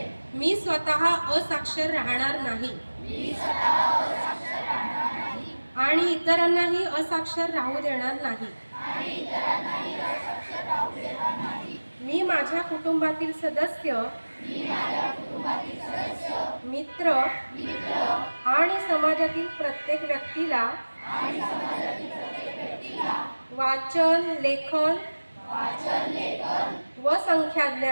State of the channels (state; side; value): inverted; both; correlation -1.00